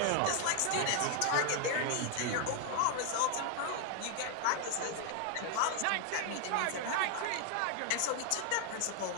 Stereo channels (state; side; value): different; both; correlation 0.00